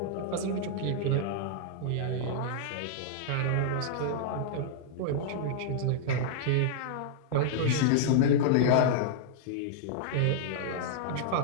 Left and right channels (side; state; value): both; different; correlation -0.01